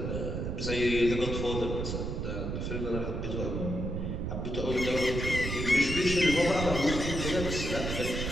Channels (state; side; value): noise; right; rumble, 3 dB below the sound